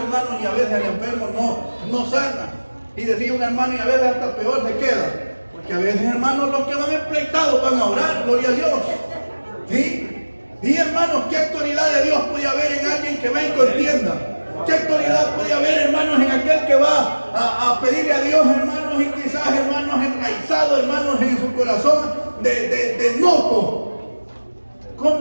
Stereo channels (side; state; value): both; inverted; correlation -1.00